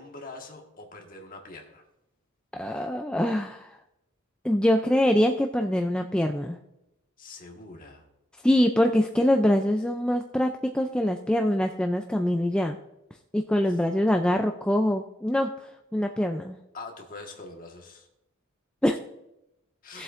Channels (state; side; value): normal; both; correlation 0.90